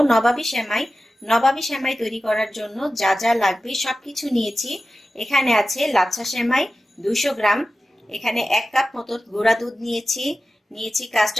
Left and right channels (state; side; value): normal; both; correlation 0.94